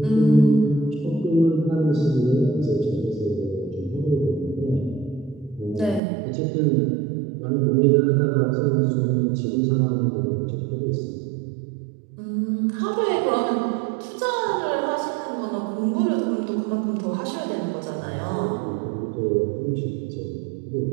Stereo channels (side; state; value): left; drops out; at 6.0 s